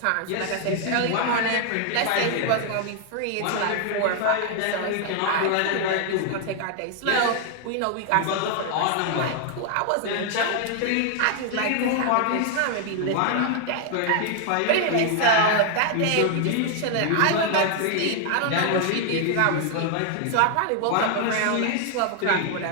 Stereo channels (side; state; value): both; different; correlation 0.00